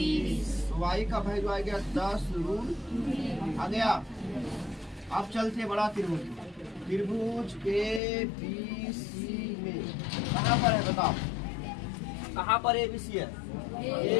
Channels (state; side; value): drops out; right; at 8.0 s